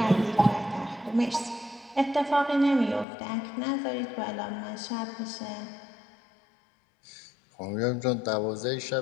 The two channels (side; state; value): right; drops out; at 3.1 s